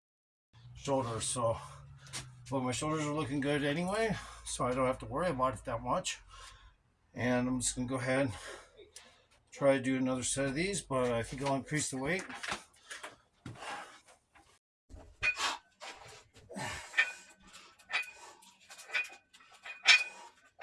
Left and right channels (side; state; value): both; identical; correlation 1.00